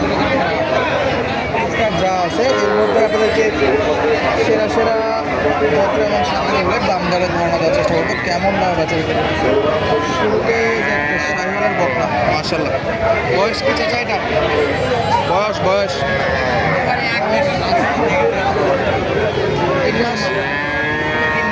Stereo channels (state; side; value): identical; both; correlation 1.00